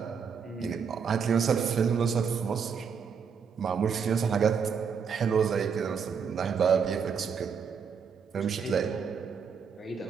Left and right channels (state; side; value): quieter; left; 6.5 dB